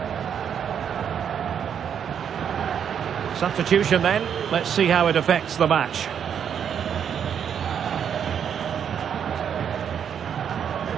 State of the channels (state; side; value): quieter; left; 8.2 dB